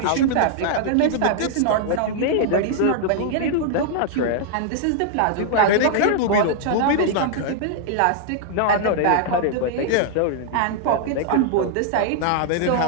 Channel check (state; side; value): different; both; correlation -0.01